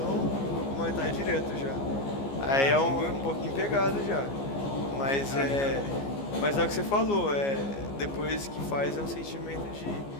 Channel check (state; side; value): late; right; 15 ms